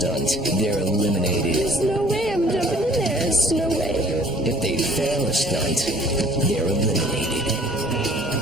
they're eliminated. There's no way I'm jumping in there. There's no way. If they fail a stunt, they're eliminated.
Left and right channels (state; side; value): normal; both; correlation 0.54